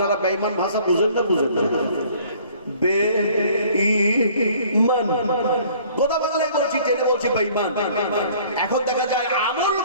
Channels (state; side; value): inverted; both; correlation -0.54